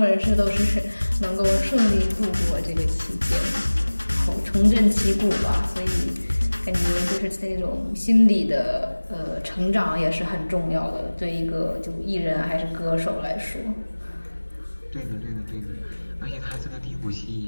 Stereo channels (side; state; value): both; inverted; correlation -1.00